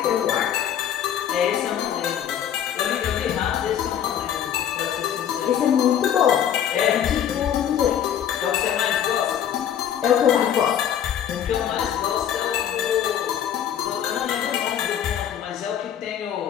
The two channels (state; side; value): quieter; right; 9.6 dB